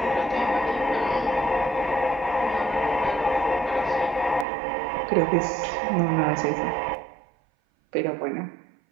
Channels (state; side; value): drops out; left; at 4.5 s